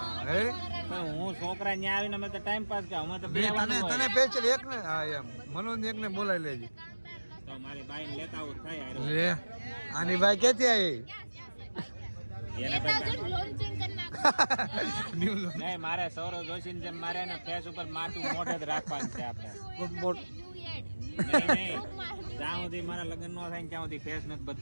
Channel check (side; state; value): both; inverted; correlation -1.00